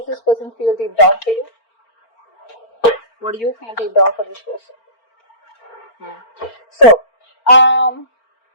this person feel deep down for you? What do you feel deep down for this person? So,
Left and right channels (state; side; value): late; right; 4.4 ms